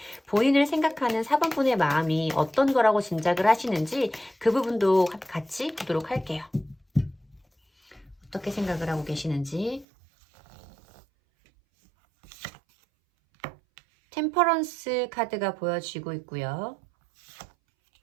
본인을 생각하는 4번 분의 마음이 어떤 거라고 짐작을 하시는지 그 부분도 같이 보도록 할게요. 어떻게 생각을 하고 계시는지. 템퍼런스 카드가 보여지고 있고요.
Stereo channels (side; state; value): left; drops out; at 9.9 s